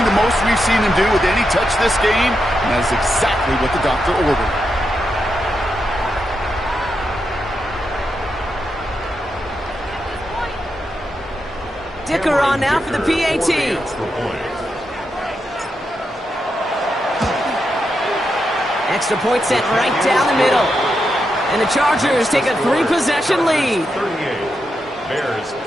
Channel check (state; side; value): normal; both; correlation 0.85